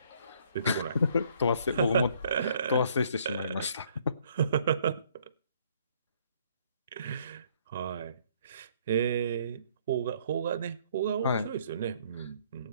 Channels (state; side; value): inverted; both; correlation -0.63